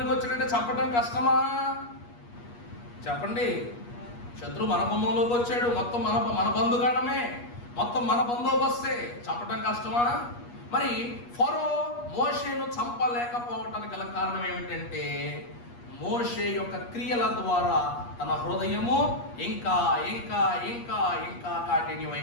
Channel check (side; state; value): right; late; 8.4 ms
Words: వచ్చాడంటే చంపడం కష్టమా చెప్పండి? శత్రువు మన గుమ్మంలోకి వచ్చాడు, మొత్తం మన బంధుగాడమే, మొత్తం మన బందోబస్తే, చంపడం కష్టమా? మరి ఫరో మోషేను చంపలేకపోవటానికి గల కారణం ఏమిటంటే మోషే యొక్క క్రియల ద్వారా తన హృదయము ఇంకా ఇంకా ఇంకా ఇంకా